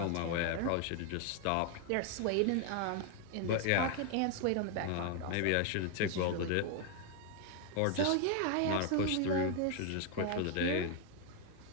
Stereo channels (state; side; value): different; both; correlation 0.01